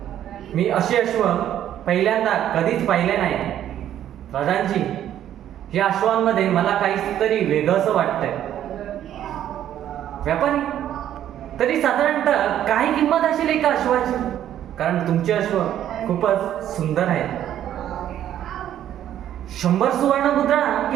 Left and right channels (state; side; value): quieter; left; 11.2 dB